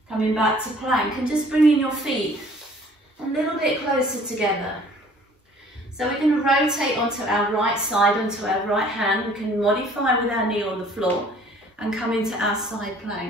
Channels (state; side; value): normal; both; correlation 0.54